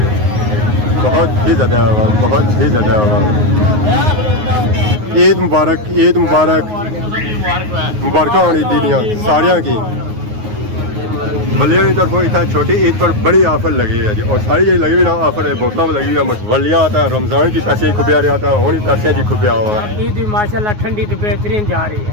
बहुत ही ज़्यादा हुआ बहुत ही ज़्यादा हुआ। ईद मुबारक मुबारक होनी दीदियाँ सारिया की वलिया की तरफों इतना छोटी ईद पर बड़ी ऑफर लगी है जी और सारी जी लगी हुई ना ऑफर है बोतल में लगी हुई है वलिया आता है रमज़ान की पैसे खुबिया रहा था होनी पैसे जी खुबिया हुआ है। ईद माशाल्लाह ठंडी तो बेहतरीन जा रही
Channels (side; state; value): left; late; 9.5 ms